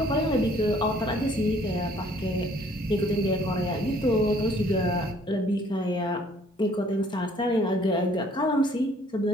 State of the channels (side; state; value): both; normal; correlation 0.59